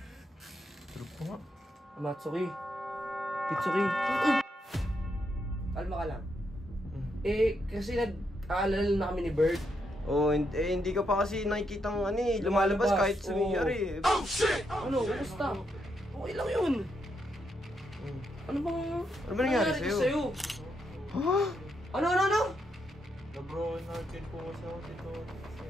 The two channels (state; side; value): normal; both; correlation 0.80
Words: Tulog po nga. Matsuki. Kitsuki. Kalma ka lang. Kasi nag-aalala na kami ni Bert. Oh, hindi ka pa kasi nakikitang lumalabas kahit sumiyari. Oh shit! Ano? Kumusta? Okay lang yun. Ano ba nangyari sa'yo? Ha? Ano? Na-bro natin po kasi ako dito.